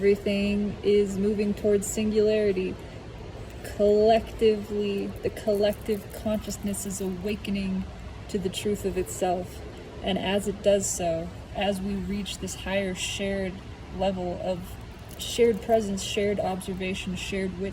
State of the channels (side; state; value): both; identical; correlation 1.00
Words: is moving towards singularity. Collectively, the collective consciousness is awakening to the truth of itself. And as it does so, as we reach this higher shared level of shared presence, shared observation, shared